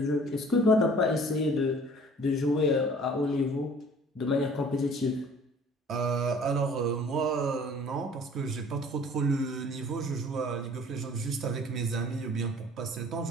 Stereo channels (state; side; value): normal; both; correlation 0.51